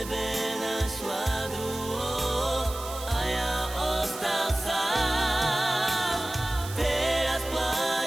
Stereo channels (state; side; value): noise; right; hiss, 13 dB below the sound